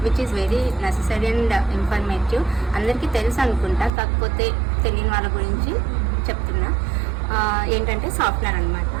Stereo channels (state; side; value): drops out; left; at 3.9 s